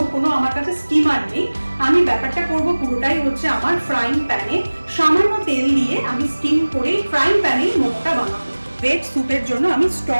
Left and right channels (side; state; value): both; inverted; correlation -1.00